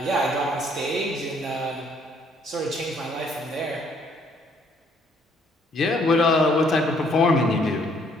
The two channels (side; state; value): both; normal; correlation 0.65